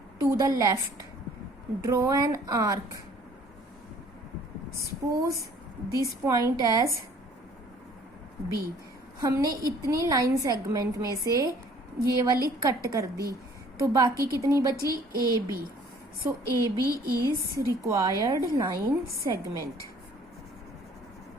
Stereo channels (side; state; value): both; normal; correlation 0.55